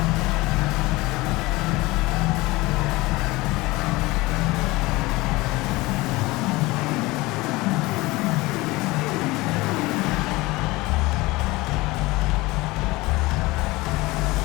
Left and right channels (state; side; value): quieter; right; 21.3 dB